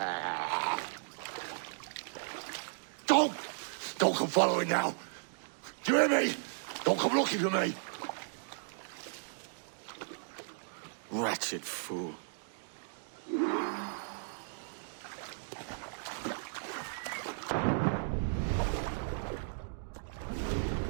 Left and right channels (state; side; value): silent; left; digital silence